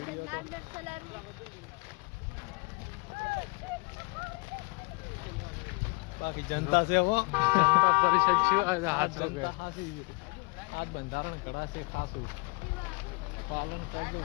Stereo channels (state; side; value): quieter; right; 29.9 dB